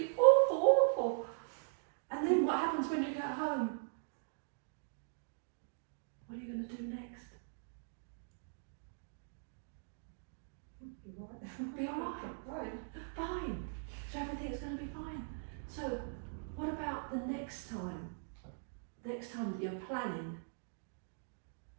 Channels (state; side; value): silent; left; digital silence